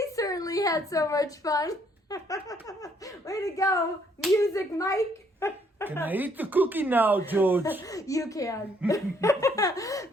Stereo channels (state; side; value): normal; both; correlation 0.67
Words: certainly had so much fun. Way to go, Music Mike. Can I eat the cookie now, George? You can. Bye,